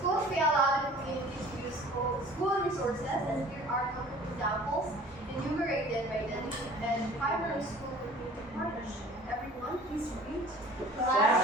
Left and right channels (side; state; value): both; normal; correlation 0.48